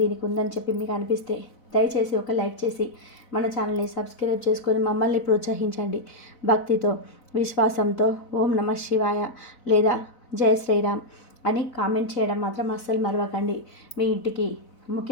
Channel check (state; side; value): late; right; 4.0 ms